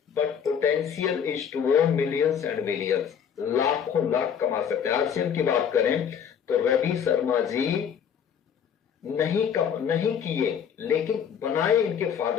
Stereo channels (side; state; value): right; quieter; 7.9 dB